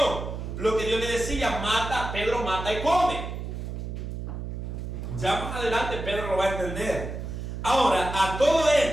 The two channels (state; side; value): noise; right; hum, 6 dB below the sound